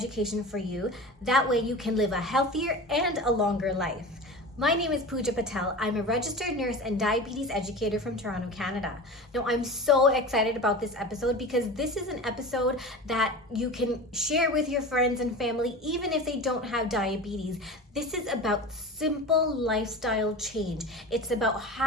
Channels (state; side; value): normal; both; correlation 0.32